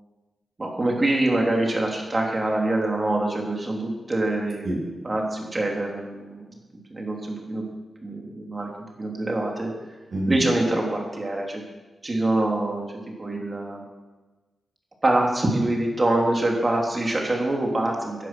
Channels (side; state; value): both; normal; correlation 0.94